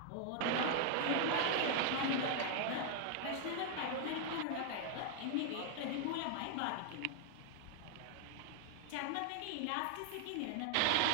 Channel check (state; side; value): different; both; correlation 0.00